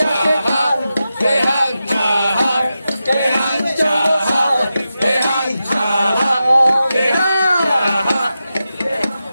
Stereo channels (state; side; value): inverted; both; correlation -0.91